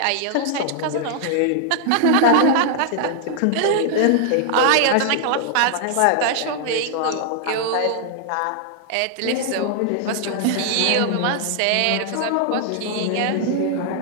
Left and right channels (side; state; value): both; different; correlation 0.00